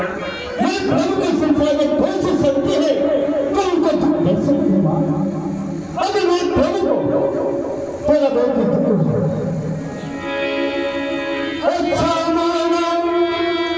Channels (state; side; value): identical; both; correlation 1.00